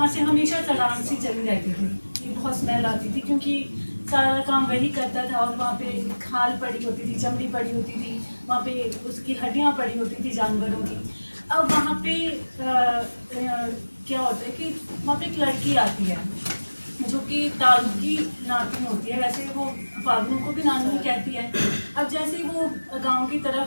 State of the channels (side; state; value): both; inverted; correlation -1.00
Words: से हमेशा सड़ान सी चली रहती थी, ये बहुत स्मेल आती थी क्योंकि सारा काम वही करता था। और वहाँ पे खाल पड़ी होती थी, चमड़ी पड़ी होती थी, वहाँ पे उसकी हड्डियाँ पड़ी होती थी जानवरों की। अब वहाँ पे क्या होता है कि वहाँ पे एक लड़की आती है जो कि तारू की नातिन होती है, वैसे वो फागनू को भी नानी कहती है। अब जैसे ही वो गांव की